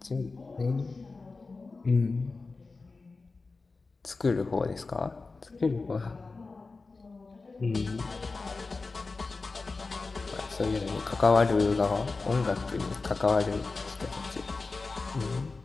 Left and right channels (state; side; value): quieter; right; 3.9 dB